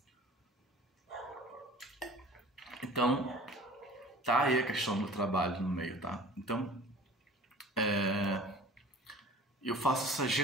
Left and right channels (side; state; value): both; normal; correlation 0.44